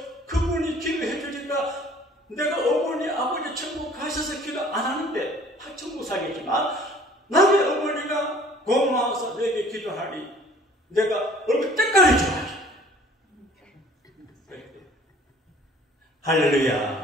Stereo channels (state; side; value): normal; both; correlation 0.52